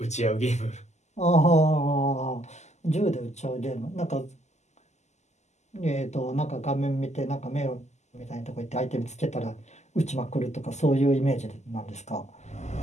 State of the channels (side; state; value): right; late; 0.33 ms